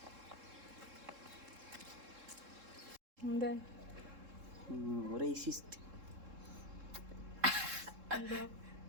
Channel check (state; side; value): late; left; 3.7 ms